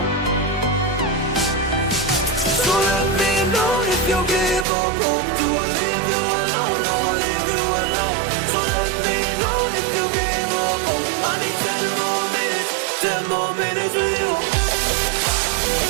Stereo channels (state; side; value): drops out; left; at 4.7 s